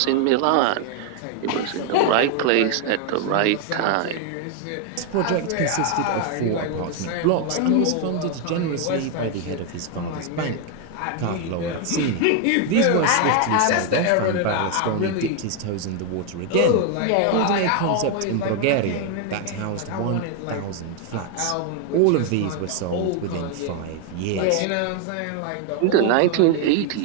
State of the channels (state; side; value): different; both; correlation 0.01